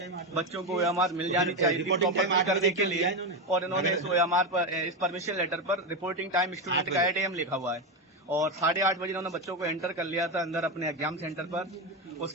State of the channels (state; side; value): normal; both; correlation 0.12